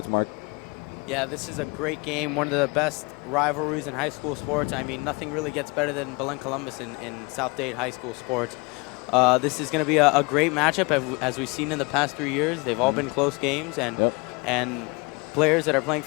Mark. Yeah, this is a great game, one of the best rivalries in high school sports. I mean, nothing really gets better than Belen Columbus in South Dade high school sports. This is going to be a great matchup, as we've seen in the past 3 years. They've all been close games, and players that are playing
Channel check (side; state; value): right; quieter; 28.3 dB